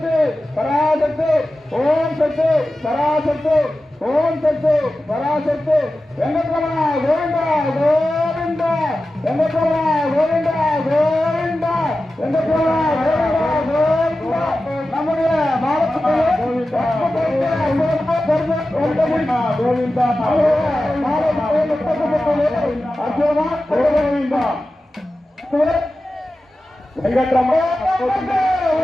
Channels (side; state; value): both; normal; correlation 0.94